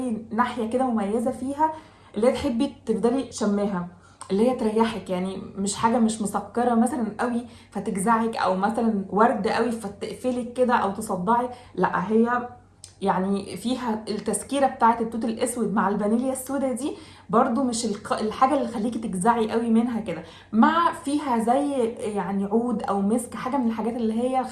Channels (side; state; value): both; identical; correlation 1.00